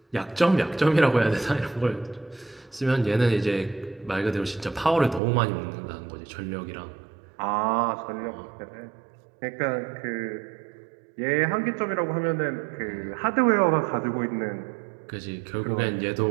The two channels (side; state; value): left; drops out; at 5.2 s